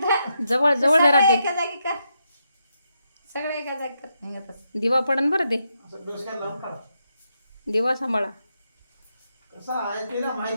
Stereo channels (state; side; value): inverted; both; correlation -0.82